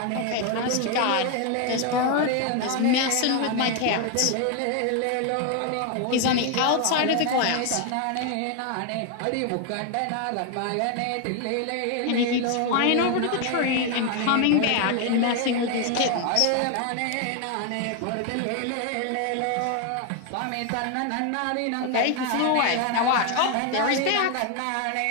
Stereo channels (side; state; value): both; different; correlation 0.01